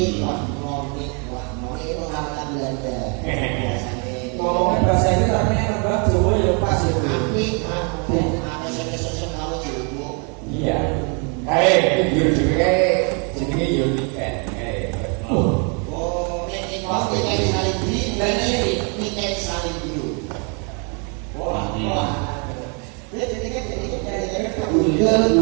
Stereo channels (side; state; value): left; quieter; 36.4 dB